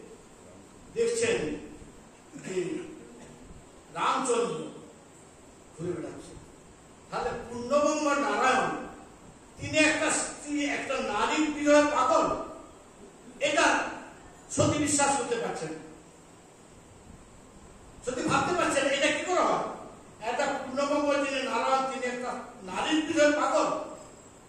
দেখছেন যে রামচন্দ্র ঘুরে বেড়াচ্ছে। তাহলে পূর্ণবঙ্গ নারায়ণ তিনি একটা স্ত্রী, একটা নারীর বিরহে পাগল, এটা সতী বিশ্বাস করতে পারছেন, সতী ভাবতে পারছেন এটা কি করে হয়। একটা পূর্ণবঙ্গ যিনি নারায়ণ, তিনি একটা নারীর বিরহে পাগল।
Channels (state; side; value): identical; both; correlation 1.00